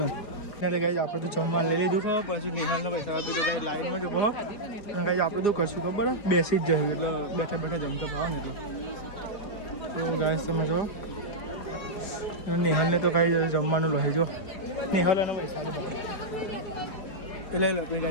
એટલે ગાય આપણે તો જમવાનું લઈ લીધું પછી નિહાળનો પૈસા જવો અને ગાય આપણે તો કરશું ખબર બેસી જ જઈએ એટલે બેઠા જમતા ભાવ ને એટલે તો ગાય તમે જો નિહાલને તો કાંઈ જમવાનું લઈ જો નિહાલ એનો પૈસા ભાવ એટલે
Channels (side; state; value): right; late; 4.9 ms